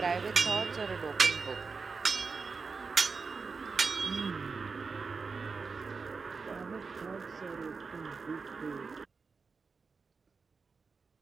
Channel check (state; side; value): quieter; left; 4.8 dB